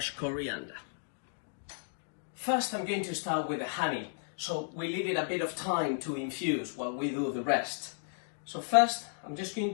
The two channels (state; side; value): silent; right; digital silence